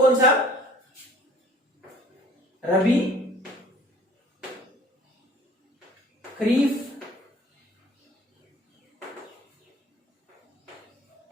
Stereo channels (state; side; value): normal; both; correlation 0.52